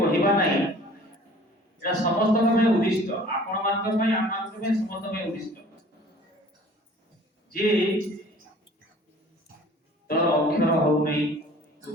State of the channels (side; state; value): both; normal; correlation 0.49